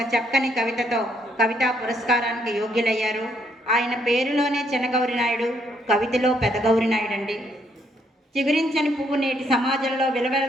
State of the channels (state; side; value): normal; both; correlation 0.71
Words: చక్కని కవితతో కవితా పురస్కారానికి యోగ్యులయ్యారు. ఆయన పేరులోనే చిన్నగౌరీనాయుడు, కవితలో పెదగౌరీనాయుడు అండి. చిగురించని పువ్వు నేటి సమాజంలో